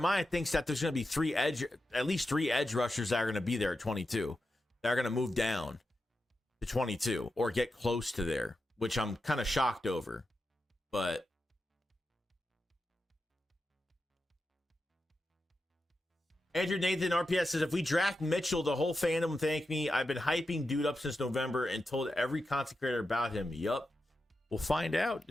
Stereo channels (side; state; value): both; normal; correlation 0.89